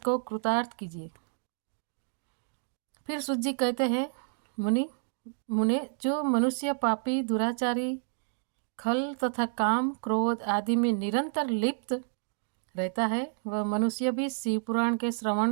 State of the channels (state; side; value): silent; left; digital silence